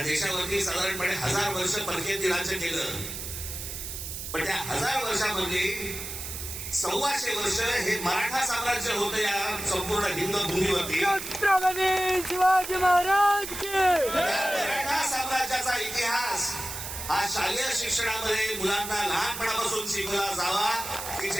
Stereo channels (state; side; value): noise; right; hiss, 7 dB below the sound